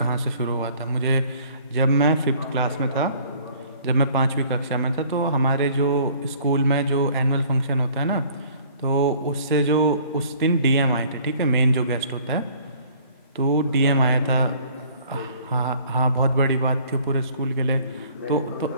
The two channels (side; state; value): both; inverted; correlation -0.54